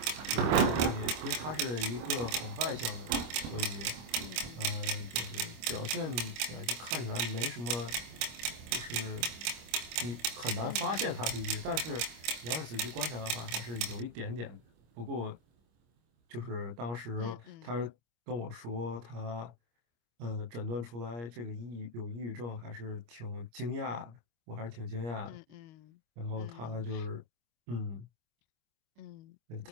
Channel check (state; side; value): late; left; 25 ms